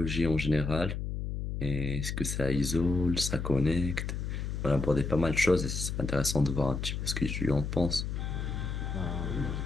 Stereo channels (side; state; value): left; noise; hum, 3 dB below the sound